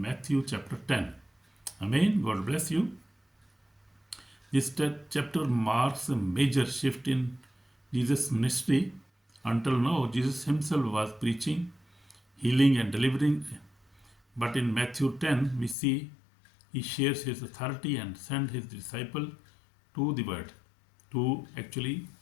chapter 10. Amen. God bless you. This chapter marks a major shift in Jesus' ministry. Until now, Jesus himself was preaching, healing, and delivering. But in Matthew 10, we see he shares his authority and sends his disciple to the world. To actually,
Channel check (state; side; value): drops out; right; at 15.8 s